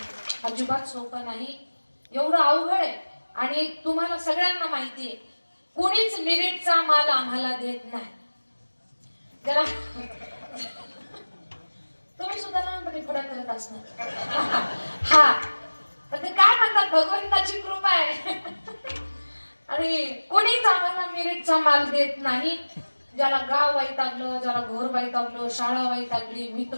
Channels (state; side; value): inverted; both; correlation -1.00